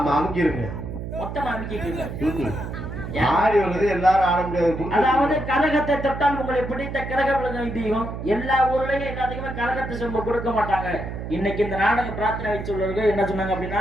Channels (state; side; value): noise; right; hum, 7 dB below the sound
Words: மொத்தமா அமைக்கிட்டு ஆடி வருது எல்லாரும் ஆட முடியாது. அதாவது கரகத்தை தொட்டால் உங்களை பிடித்த கரகம் தெய்வம். எல்லா ஊர்லயும் எல்லாத்துக்குமே கரகத்தை சொம்ப கொடுக்க மாட்டாங்க. இன்னைக்கு இந்த நாடக பிரார்த்தனை வச்சுள்ளவர்கள் என்ன சொன்னாங்க